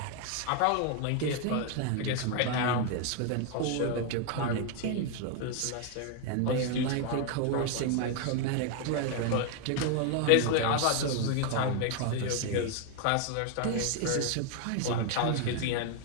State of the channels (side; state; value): both; different; correlation 0.01